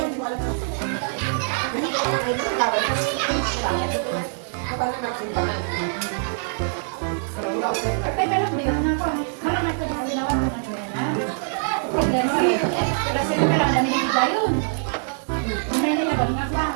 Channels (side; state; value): left; silent; digital silence